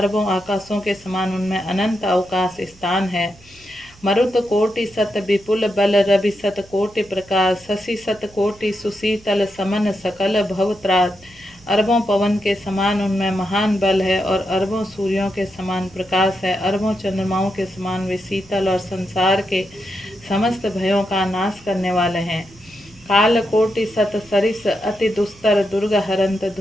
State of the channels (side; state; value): right; noise; hum, 26 dB below the sound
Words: आकाशों के समान उनमें अनंत अवकाश स्थान है। मरुत कोटि सत विपुल बल, रवि सत कोटि प्रकाश। शशि सत कोटि सुशीतल, समन सकल भव त्रास। अरबों पवन के समान उनमें महान बल है, और अरबों सूर्यों के समान प्रकाश है। अरबों चंद्रमाओं के समान वे शीतल और संसार के समस्त भयों का नाश करने वाले हैं। काल कोटि सत सरिस अति दुस्तर, दुर्ग हरंत।